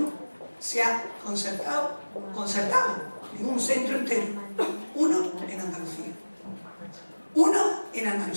se ha concertado en un centro entero, uno en Andalucía. Uno en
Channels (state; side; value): inverted; both; correlation -1.00